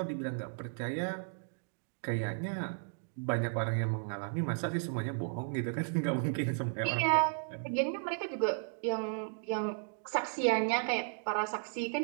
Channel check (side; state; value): left; silent; digital silence